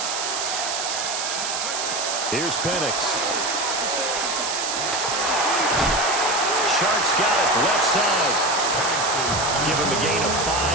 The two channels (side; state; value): right; noise; hiss, 2 dB below the sound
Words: Here's Penix. Sharks got it, left side. Give him a gain of